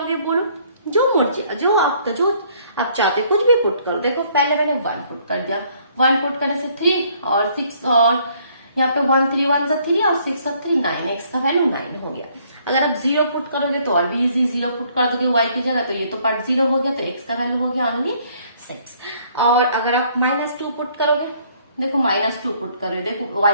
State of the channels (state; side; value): inverted; both; correlation -0.63